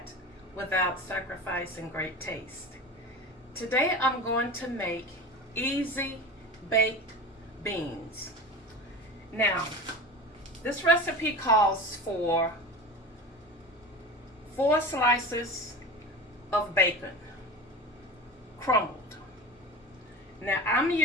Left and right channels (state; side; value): normal; both; correlation 0.31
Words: without sacrificing great taste. Today I'm going to make easy baked beans. Now, this recipe calls for 4 slices of bacon, crumbled. Now I'm